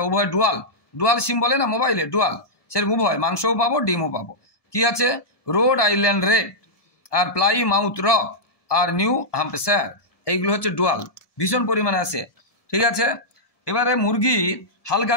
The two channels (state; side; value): late; right; 1.7 ms